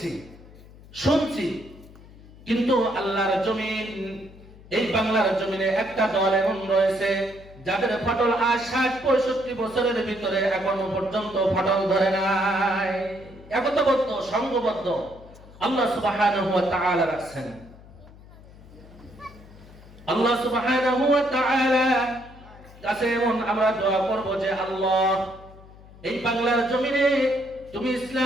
শুনছি। কিন্তু আল্লাহর জমিন এই বাংলার জমিনে একটা দল এমন রয়েছে যাদের ফাটল আজ 60-65 বছরের ভিতরে এখনো পর্যন্ত ফাটল ধরে নাই। একতাবদ্ধ, সংঘবদ্ধ আল্লাহ সুবহানাহু ওয়া তাআলা রাখছেন। আল্লাহ সুবহানাহু ওয়া তাআলা কাছে এমন আমরা দোয়া করব যে আল্লাহ, এই বাংলার জমিনে তুমি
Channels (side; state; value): left; noise; hum, 21 dB below the sound